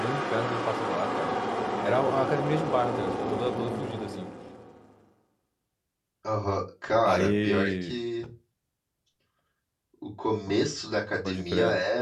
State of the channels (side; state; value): both; identical; correlation 1.00